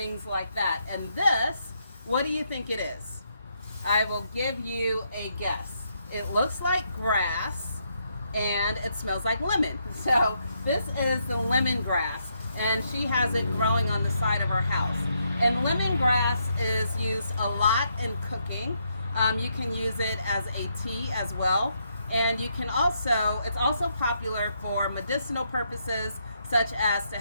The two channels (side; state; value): both; inverted; correlation -0.77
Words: like that. And this, what do you think it is? I will give you a guess. It looks like grass and it smells like lemon. So this is the lemongrass, and she has it growing on the side of her house. And lemongrass is used a lot in cooking. You can use it as a tea as well. And you can also, it's also popular for medicinal purposes, such as to